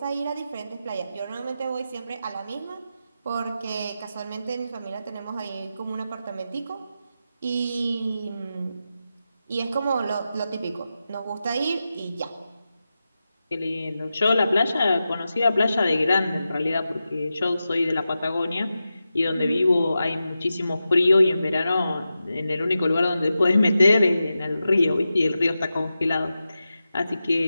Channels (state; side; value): inverted; both; correlation -0.91